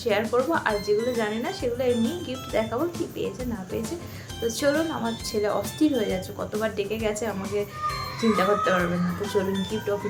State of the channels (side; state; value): both; identical; correlation 1.00